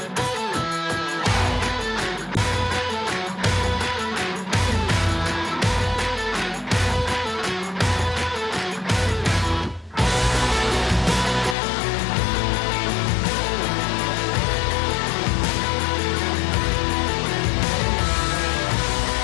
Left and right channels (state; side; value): drops out; right; at 11.6 s